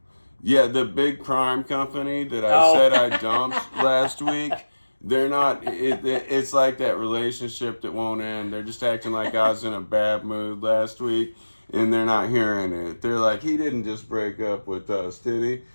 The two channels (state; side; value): inverted; both; correlation -1.00